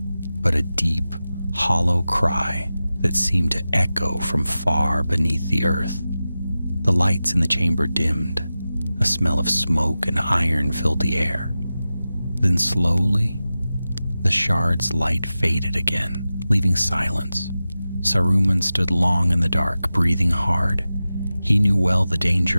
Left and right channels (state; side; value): inverted; both; correlation -0.94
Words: but a deep, hollow cry that seemed to echo from far beneath the earth. The lights in the chamber dimmed. A smell of smoke and iron filled the air. Then slowly, the shard's light faded again, leaving silence. Saruman stood long in the dark, breathing hard. He knew well the